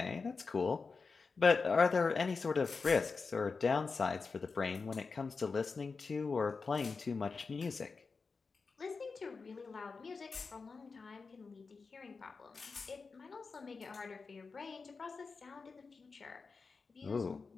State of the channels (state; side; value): quieter; right; 4.6 dB